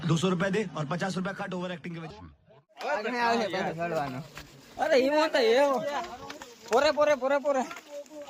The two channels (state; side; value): identical; both; correlation 1.00